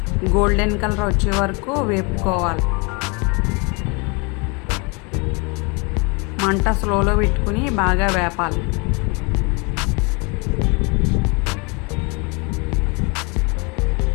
గోల్డెన్ కలర్ వచ్చే వరకు వేపుకోవాలి. మంట స్లోలో పెట్టుకుని బాగా వేపాలి.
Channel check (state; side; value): quieter; right; 30.6 dB